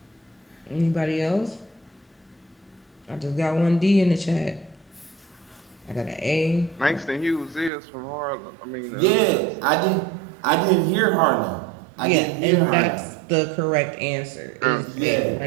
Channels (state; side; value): drops out; left; at 7.7 s